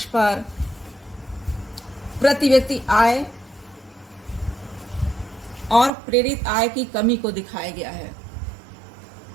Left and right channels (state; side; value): drops out; left; at 5.9 s